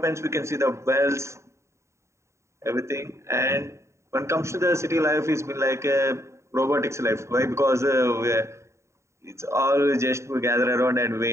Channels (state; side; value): late; left; 0.14 ms